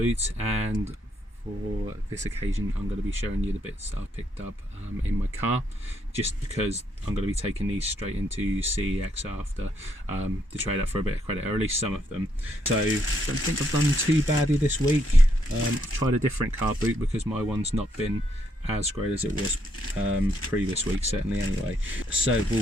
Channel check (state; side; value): normal; both; correlation 0.74